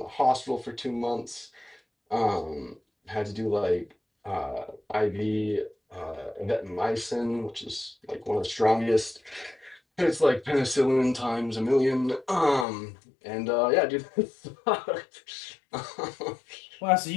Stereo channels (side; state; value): right; drops out; at 12.7 s